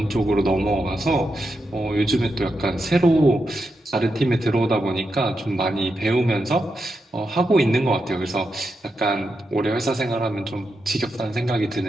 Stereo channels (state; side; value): normal; both; correlation 0.86